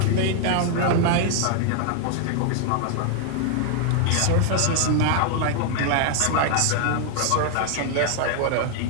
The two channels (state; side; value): different; both; correlation 0.00